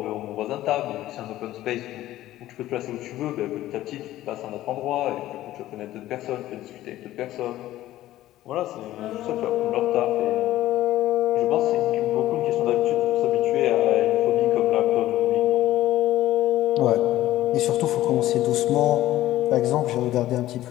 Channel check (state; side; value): quieter; right; 14.7 dB